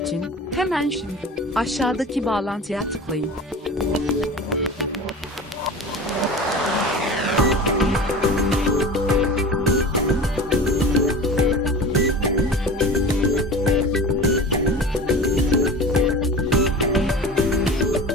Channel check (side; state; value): both; normal; correlation 0.34